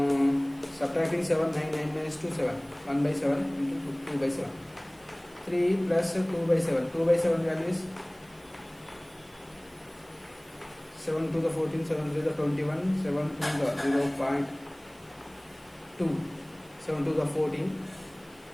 Subtracting 7, 9, 9 minus 2, 7. 1 by 7 into 2 by 7. 3 plus 2 by 7. 2 by 7 value is 7 to the 14, 7 to the 21, 7 to the 0.2, 7 to the 14.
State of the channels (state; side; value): noise; right; hiss, 27 dB below the sound